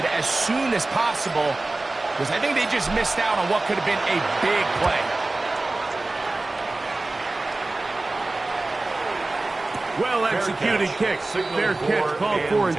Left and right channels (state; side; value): quieter; left; 3.0 dB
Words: as soon as possible, because I think they just missed out on what could have been a big play. Well-executed kick. Fair catch called for and